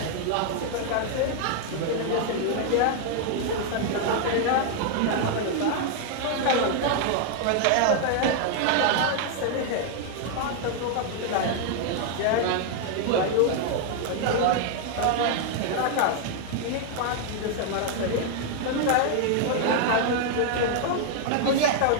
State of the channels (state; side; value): different; both; correlation 0.00